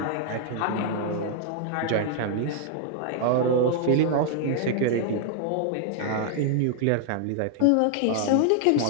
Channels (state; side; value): different; both; correlation 0.00